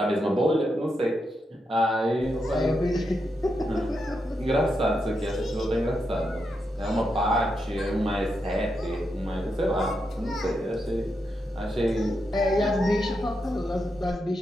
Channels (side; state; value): both; normal; correlation 0.84